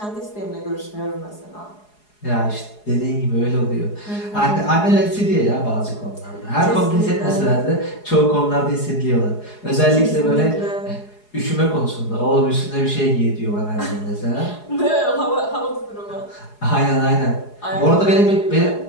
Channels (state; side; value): late; right; 4.8 ms